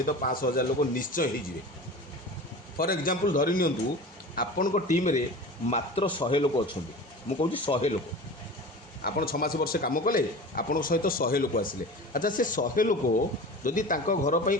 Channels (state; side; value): normal; both; correlation 0.35